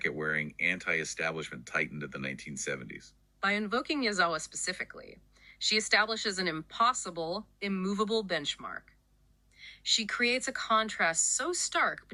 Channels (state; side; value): identical; both; correlation 1.00